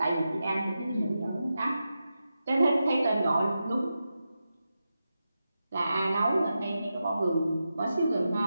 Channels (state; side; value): inverted; both; correlation -0.90